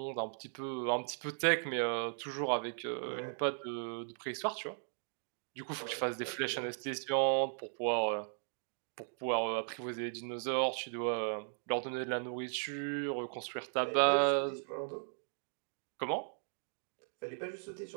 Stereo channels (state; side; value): silent; left; digital silence